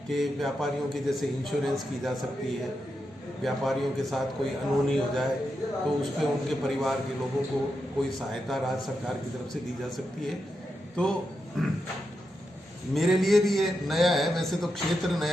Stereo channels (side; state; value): both; normal; correlation 0.86